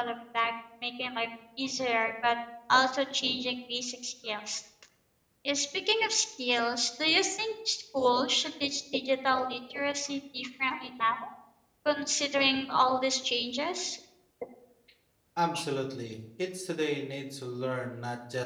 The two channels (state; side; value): identical; both; correlation 1.00